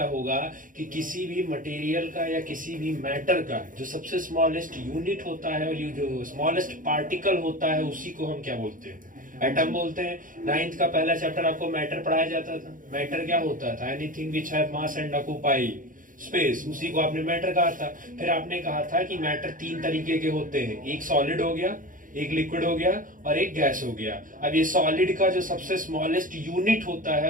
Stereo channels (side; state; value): left; late; 0.39 ms